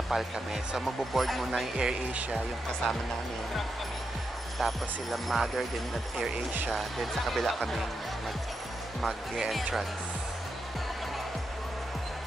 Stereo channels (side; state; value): both; normal; correlation 0.85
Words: PAL kami. So magbo-board muna yung Air Asia, yung kasama namin. Tapos sila Mother din at Air Asia. Then sa kabila kami mag-entrance.